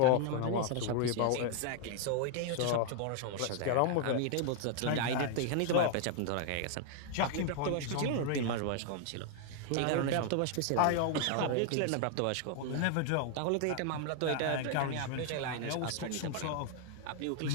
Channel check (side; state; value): both; different; correlation 0.00